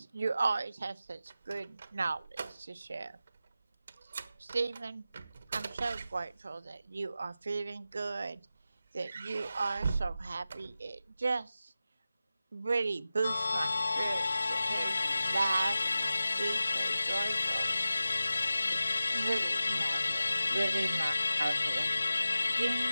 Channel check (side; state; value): both; inverted; correlation -0.93